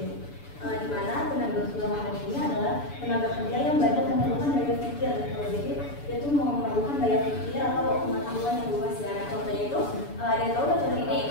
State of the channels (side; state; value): right; late; 6.9 ms